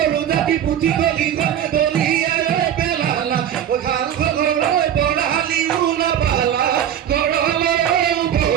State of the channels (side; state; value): left; quieter; 10.1 dB